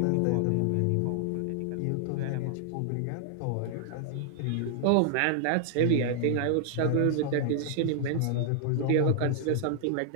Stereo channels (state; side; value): different; both; correlation -0.01